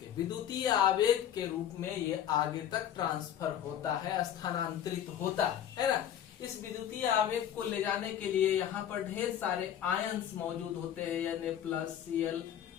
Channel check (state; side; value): quieter; right; 10.2 dB